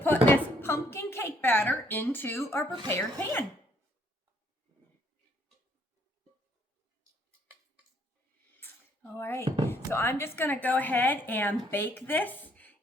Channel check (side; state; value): both; normal; correlation 0.66